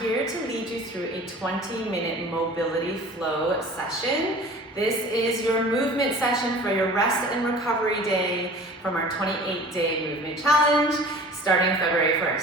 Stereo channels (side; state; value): both; normal; correlation 0.44